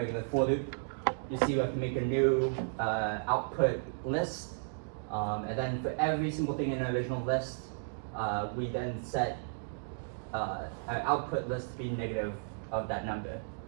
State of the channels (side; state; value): left; silent; digital silence